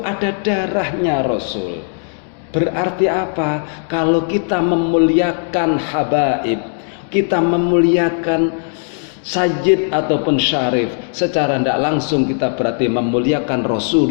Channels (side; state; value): right; silent; digital silence